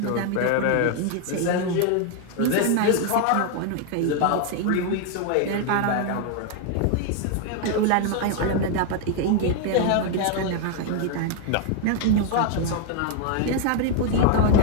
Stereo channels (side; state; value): both; different; correlation 0.00